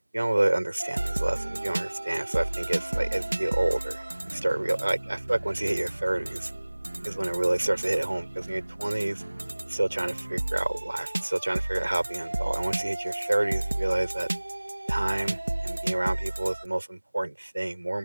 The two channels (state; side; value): inverted; both; correlation -1.00